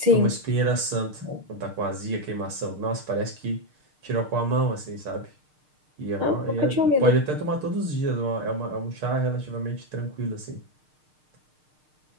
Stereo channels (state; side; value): late; left; 6.6 ms